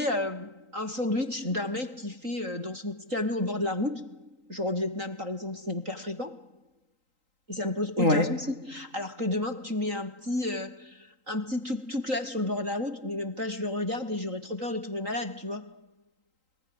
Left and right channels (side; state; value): left; late; 3.8 ms